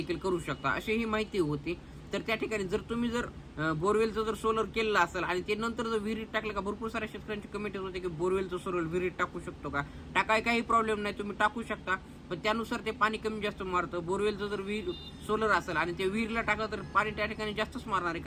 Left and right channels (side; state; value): both; identical; correlation 1.00